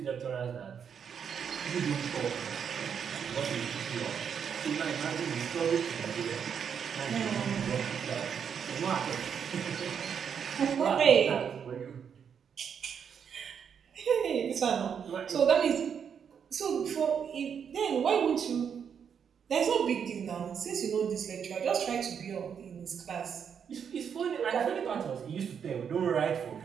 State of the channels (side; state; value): left; quieter; 7.4 dB